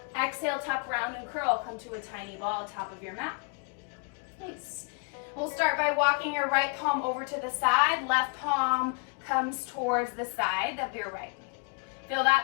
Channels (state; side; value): quieter; right; 34.4 dB